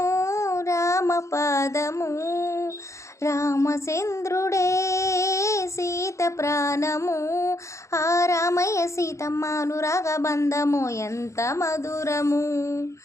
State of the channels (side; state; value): right; late; 0.14 ms